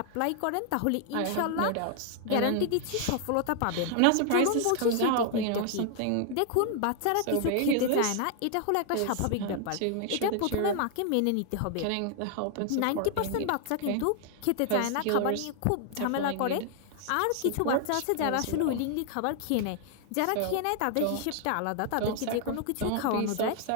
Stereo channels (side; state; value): both; different; correlation 0.00